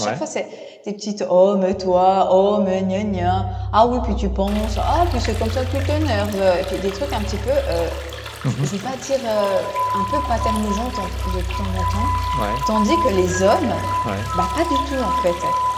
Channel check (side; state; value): both; identical; correlation 1.00